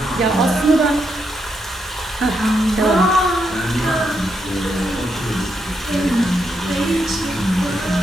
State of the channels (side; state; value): both; normal; correlation 0.81